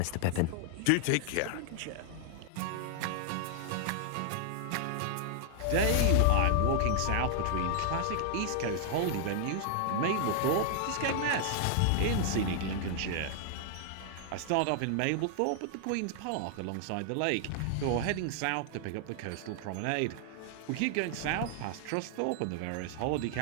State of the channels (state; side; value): different; both; correlation 0.00